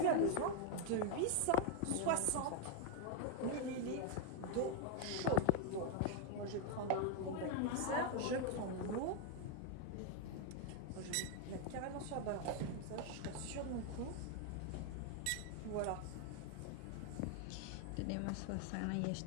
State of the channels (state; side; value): different; both; correlation 0.01